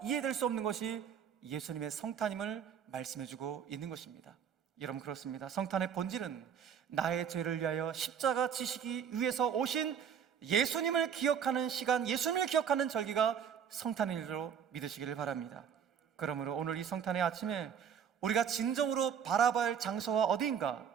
이해될 수 없는 것이 예수님의 성탄임을 말씀해주고 있는 것입니다. 여러분, 그렇습니다. 성탄의 본질은 나의 죄를 위하여 십자가 지시기 위해서 오신 예수님을 기억하는 시간, 예수님을 기억하는 절기가 성탄일로 믿으시기를 바랍니다. 그러므로 오늘 이 성탄의 아침에 우리가 진정으로 바라봐야 할 장소가 어디인가?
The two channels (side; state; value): left; quieter; 8.0 dB